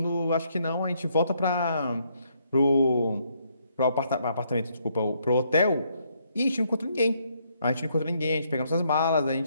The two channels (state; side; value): inverted; both; correlation -0.72